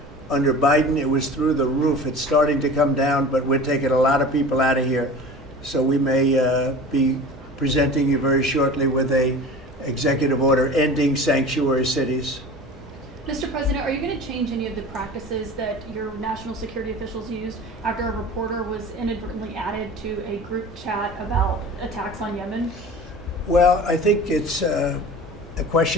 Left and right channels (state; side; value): normal; both; correlation 0.38